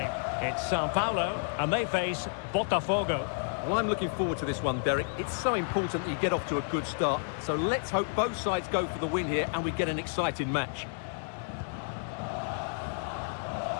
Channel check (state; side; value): silent; right; digital silence